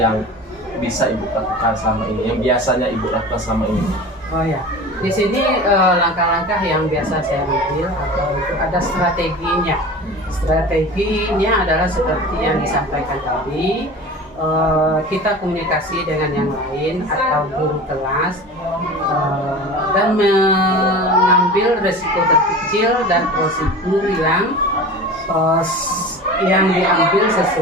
bisa ibu lakukan selama ini, yang biasanya ibu lakukan selama ini? Oh ya, di sini langkah-langkah yang biasa saya ambil atau itu ada strateginya. Strateginya adalah seperti yang disampaikan tadi, kita komunikasi dengan yang lain atau guru kelas dan mengambil resiko terkecil dan prosedur yang diambil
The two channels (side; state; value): both; normal; correlation 0.35